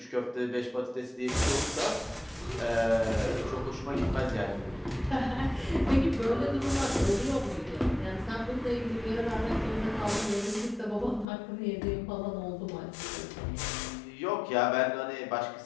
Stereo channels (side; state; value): right; drops out; at 11.2 s